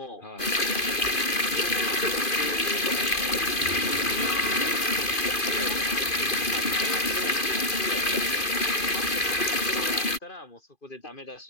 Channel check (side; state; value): right; late; 2.5 ms